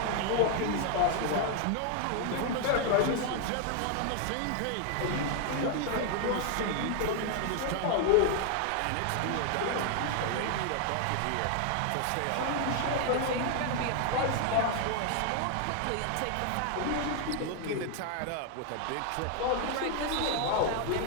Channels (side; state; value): both; different; correlation 0.00